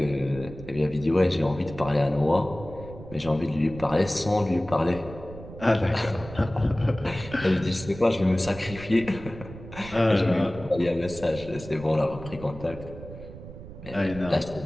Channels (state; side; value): noise; right; rumble, 14 dB below the sound